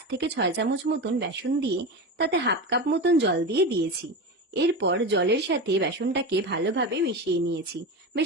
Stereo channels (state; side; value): normal; both; correlation 0.22